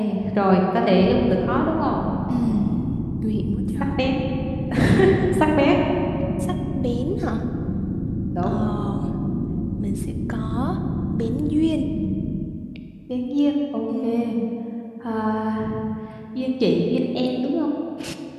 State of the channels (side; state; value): both; identical; correlation 1.00